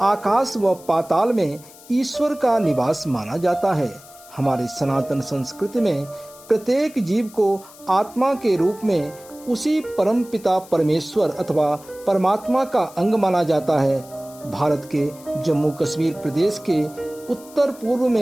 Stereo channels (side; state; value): left; noise; hiss, 21 dB below the sound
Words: आकाश व पाताल में ईश्वर का निवास माना जाता है। हमारे सनातन संस्कृति में प्रत्येक जीव को आत्मा के रूप में उसी परम पिता परमेश्वर अथवा परमात्मा का अंग माना जाता है। भारत के जम्मू कश्मीर प्रदेश के उत्तर पूर्व